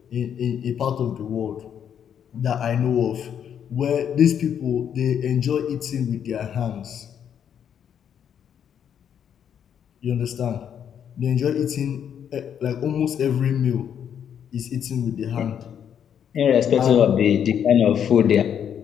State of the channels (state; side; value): quieter; right; 8.6 dB